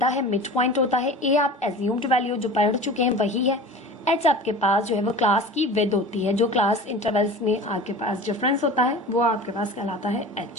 है मिड पॉइंट होता है, ए आप एज्यूम्ड वैल्यू जो पढ़ चुके हैं वही है, एच आपके पास जो है वो क्लास की विद होती है, जो क्लास इंटरवल्स में आपके पास डिफरेंस होता है वो आपके पास कहलाता है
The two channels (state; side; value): normal; both; correlation 0.37